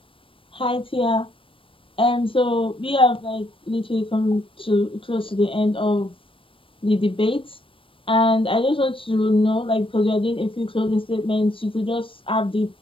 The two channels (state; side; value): late; right; 0.25 ms